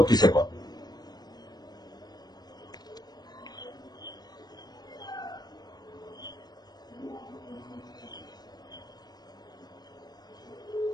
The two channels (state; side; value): late; right; 0.19 ms